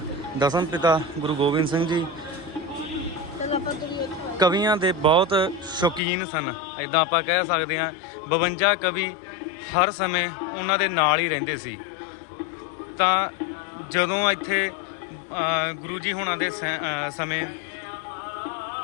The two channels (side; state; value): right; drops out; at 6.0 s